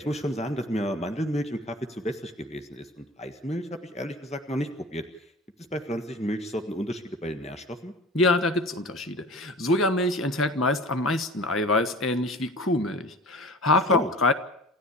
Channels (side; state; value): both; normal; correlation 0.40